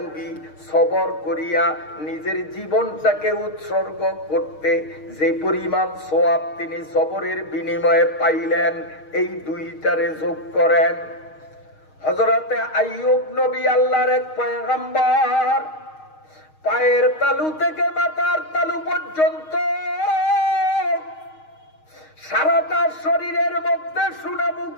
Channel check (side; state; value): right; late; 6.4 ms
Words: সবর করিয়া নিজের জীবনটাকে উৎসর্গ করতে যে পরিমাণ সওয়াব তিনি সবরের বিনিময়ে পাইলেন, এই 2টারে যোগ করেন। হযরতে আইয়ুব নবী আল্লাহর এক পয়গম্বর, পায়ের তালু থেকে মাথার তালু পর্যন্ত সারাটা শরীরের মধ্যে